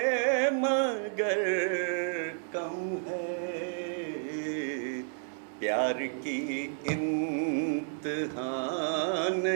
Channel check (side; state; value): left; silent; digital silence